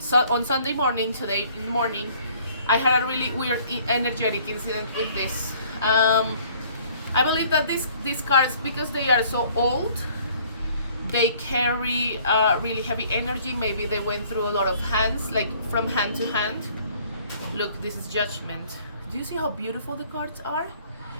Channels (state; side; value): inverted; both; correlation -0.57